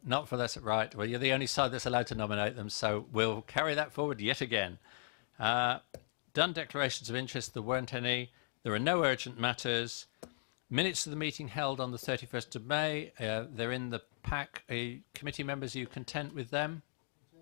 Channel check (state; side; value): silent; right; digital silence